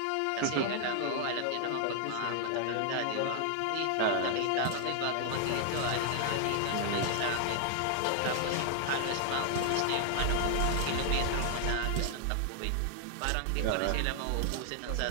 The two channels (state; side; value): different; both; correlation 0.00